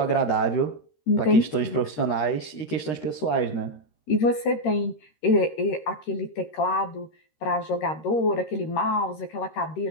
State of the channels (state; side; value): late; right; 13 ms